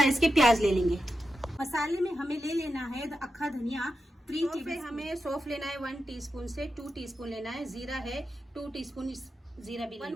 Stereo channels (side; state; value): both; normal; correlation 0.89